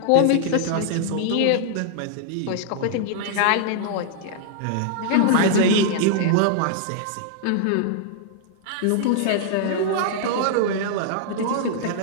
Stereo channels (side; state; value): both; different; correlation -0.01